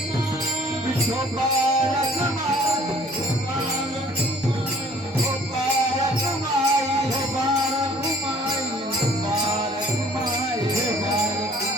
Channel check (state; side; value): normal; both; correlation 0.55